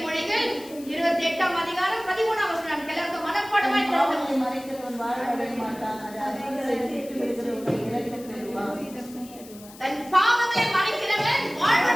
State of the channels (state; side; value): noise; left; hiss, 20 dB below the sound